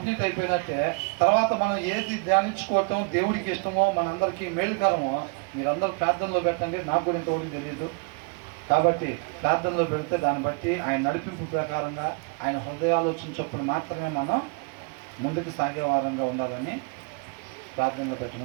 అయిపోయినట్టే. తర్వాత మనం ఏది ధ్యానించుకోవటం దేవుడికి ఇష్టమో, మనందరికీ మేలుకరమో మీరందరూ ప్రార్థనలో పెట్టండి. నాకు కూడా ఇంతవరకు తెలియదు కాబట్టి ప్రార్థనలో పెడితే దాన్ని బట్టి ఆయన నడిపింపు ప్రకారంగా ఆయన హృదయాలోచన చొప్పున మాత్రమే మనం ముందుకు సాగే వారంగా ఉండాలని ప్రార్థనలో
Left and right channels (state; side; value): quieter; left; 32.7 dB